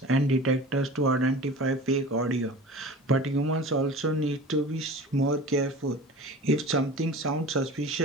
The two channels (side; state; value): both; normal; correlation 0.37